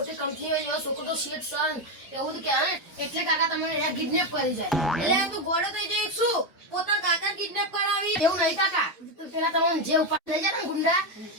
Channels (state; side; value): normal; both; correlation 0.08